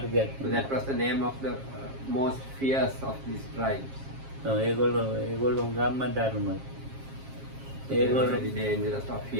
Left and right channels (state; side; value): late; left; 7.4 ms